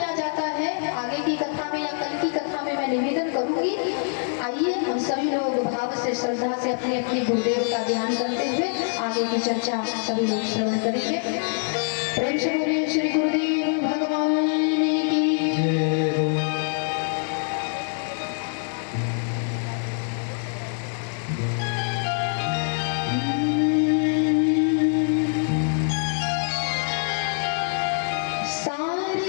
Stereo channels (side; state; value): right; silent; 62 dB below the other